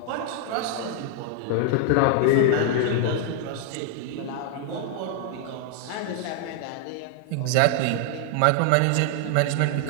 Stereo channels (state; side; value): different; both; correlation 0.00